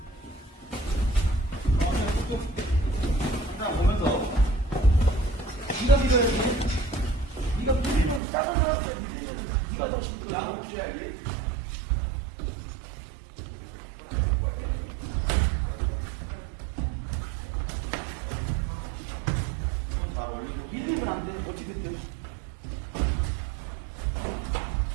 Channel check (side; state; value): left; drops out; at 8.2 s